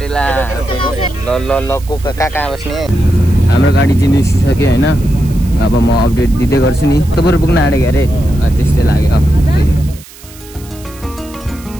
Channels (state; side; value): noise; right; hiss, 21 dB below the sound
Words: ल ल ल को कहाँ बस्ने। हाम्रो गाडी चाहिँ निस्किसक्यो होइन। अब म अपडेट दिँदै गर्छु नि। तपाईँहरू पुग्न आँटेको अरे, त्यस्तै लाग्यो।